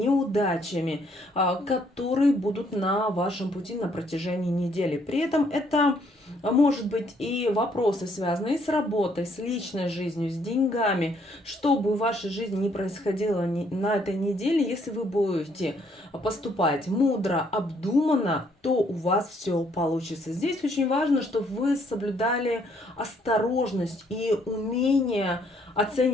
которые будут на вашем пути на протяжении недели. При этом это может быть и вопросы, связанные с работой, с личной жизнью, с деньгами. Что бы в вашей жизни ни происходило на этой неделе, если вы будете поступать мудро, обдуманно, то у вас все получится. Здесь очень важно, чтобы вы соблюдали осторожность и умение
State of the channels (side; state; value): both; normal; correlation 0.68